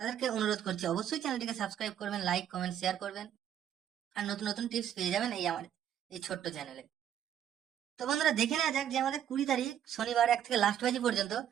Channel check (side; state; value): left; quieter; 10.0 dB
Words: অনুরোধ করছি অবশ্যই চ্যানেলটিকে সাবস্ক্রাইব করবেন, লাইক কমেন্ট শেয়ার করবেন, আর নতুন নতুন টিপস পেয়ে যাবেন এই ছোট্ট চ্যানেলে। তো বন্ধুরা দেখে নেওয়া যাক যে আমাদের 20 তারিখ শনিবার 1 থেকে লাস্ট বাজি পর্যন্ত